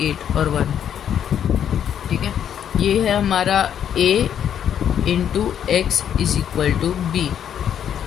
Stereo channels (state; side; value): quieter; right; 9.2 dB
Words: 8 और 1। ठीक है। ये है हमारा a into x is equal to B.